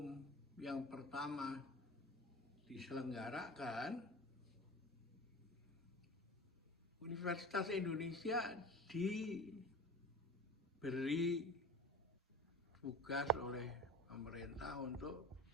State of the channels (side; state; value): both; normal; correlation 0.35